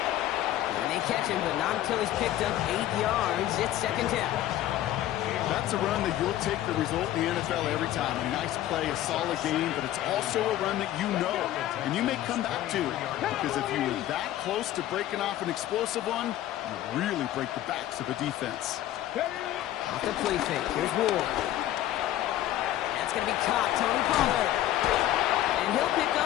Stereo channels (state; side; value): quieter; right; 13.4 dB